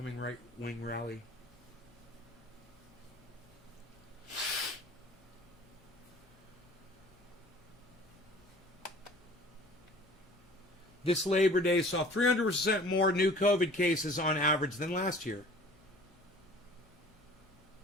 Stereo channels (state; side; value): normal; both; correlation 0.47